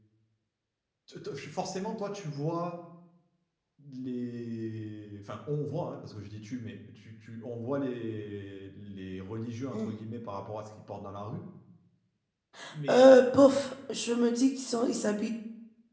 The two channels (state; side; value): identical; both; correlation 1.00